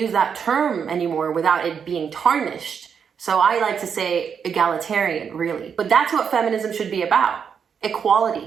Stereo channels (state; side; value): quieter; left; 7.0 dB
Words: that term anymore without it being tarnished. So I like to say egalitarian, really. But that's what feminism should be about.